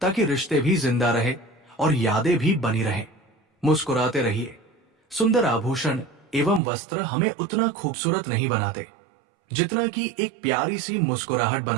ताकि रिश्ते भी जिंदा रहे और यादें भी बनी रहें। मुस्कुराते रहिए। सुंदर आभूषण एवं वस्त्र हमें उतना खूबसूरत नहीं बनाते जितना कि एक प्यारी सी मुस्कुराहट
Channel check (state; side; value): drops out; left; at 6.6 s